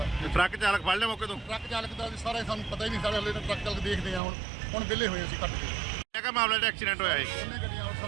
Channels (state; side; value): drops out; left; at 4.2 s